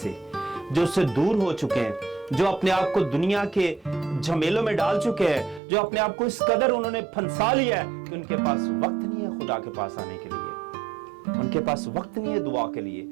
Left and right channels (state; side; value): drops out; left; at 5.6 s